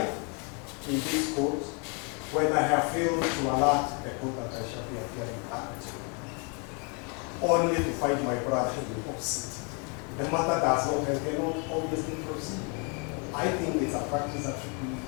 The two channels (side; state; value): right; quieter; 35.3 dB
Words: in this court when I have failed to alert the court that I shall be appearing at, only to find my brother in the opposite. The matter does not and cannot obviously proceed. I think it's a practice that should be.